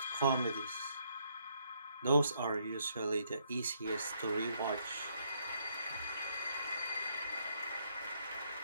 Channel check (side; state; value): both; inverted; correlation -0.72